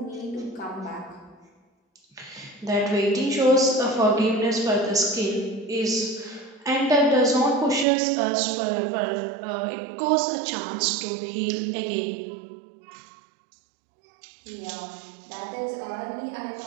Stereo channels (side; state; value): left; drops out; at 7.9 s